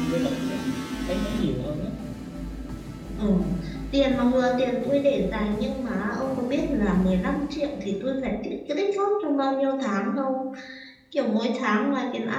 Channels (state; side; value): identical; both; correlation 1.00